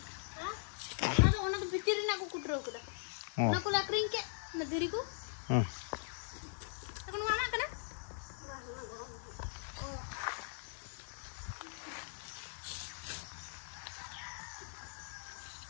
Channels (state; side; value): silent; right; digital silence